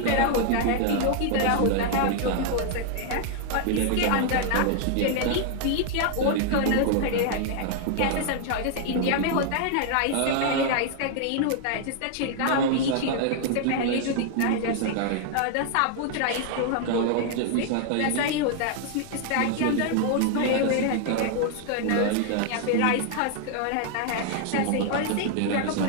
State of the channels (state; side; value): different; both; correlation 0.00